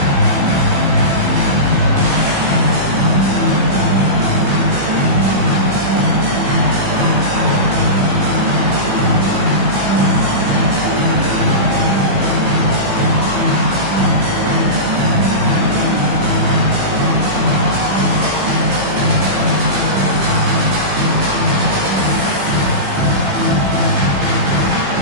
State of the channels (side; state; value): left; late; 15 ms